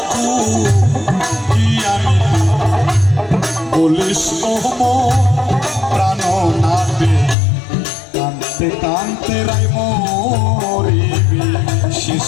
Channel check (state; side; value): drops out; right; at 7.4 s